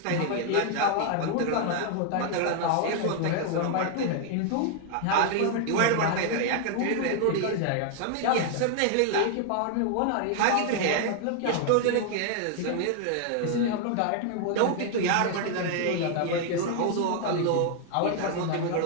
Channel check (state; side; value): different; both; correlation 0.00